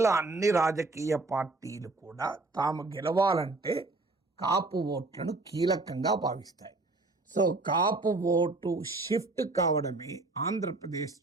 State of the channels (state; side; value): quieter; left; 3.2 dB